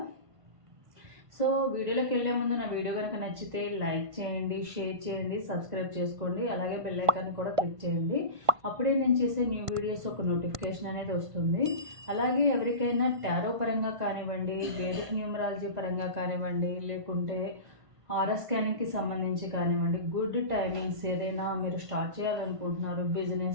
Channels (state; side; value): late; left; 1.5 ms